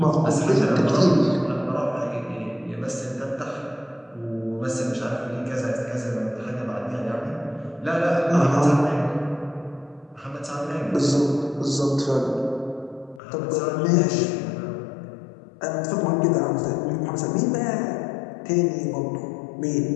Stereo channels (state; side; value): drops out; right; at 13.2 s